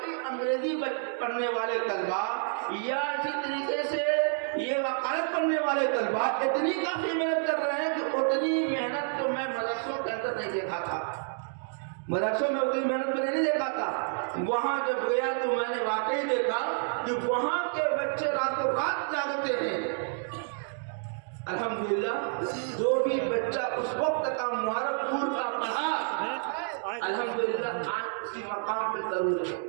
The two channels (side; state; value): left; silent; 58 dB below the other